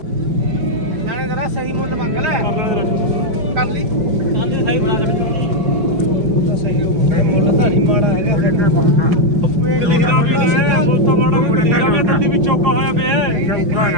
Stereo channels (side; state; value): left; late; 4.8 ms